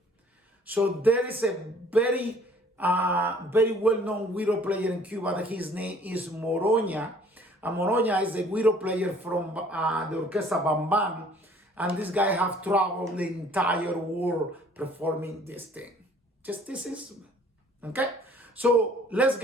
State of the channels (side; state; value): both; normal; correlation 0.56